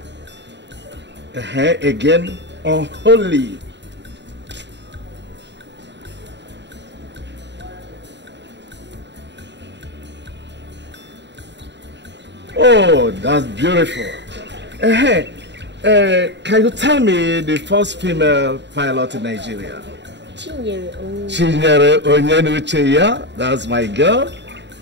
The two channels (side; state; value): left; late; 0.52 ms